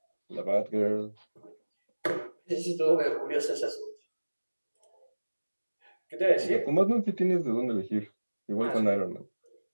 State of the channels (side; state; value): both; inverted; correlation -1.00